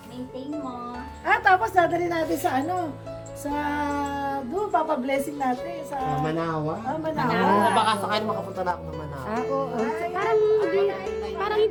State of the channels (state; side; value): identical; both; correlation 1.00